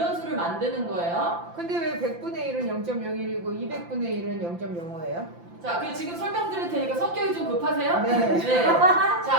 수를 만드는 거예요. 근데 왜 100분의 1은 0.01이고 200분의 1은 0.05예요? 자, 지금 설명드릴 테니까 성격이 좀 급하세요? 네.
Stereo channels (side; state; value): left; late; 5.8 ms